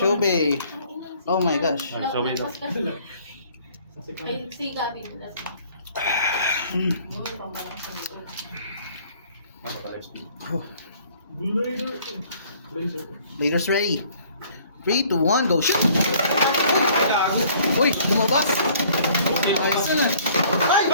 bay. Oh my gosh. So wait. Ay, siga din. Noon, pambalang sa likod. Blazers ready. 3, 2, 1, go shoot! Uy, lumabas! Ayos na.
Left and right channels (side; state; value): both; inverted; correlation -0.57